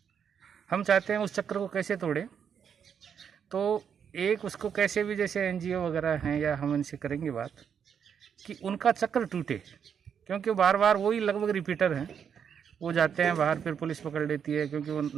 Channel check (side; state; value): left; quieter; 7.6 dB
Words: हम चाहते हैं उस चक्र को कैसे तोड़ें, तो एक उसको कैसे भी, जैसे एनजीओ वगैरह हैं या हम इनसे करेंगे बात कि उनका चक्र टूटे, क्योंकि बार बार वही लगभग रिपीटर हैं। वो जाते हैं बाहर, फिर पुलिस पकड़ लेती है क्योंकि वो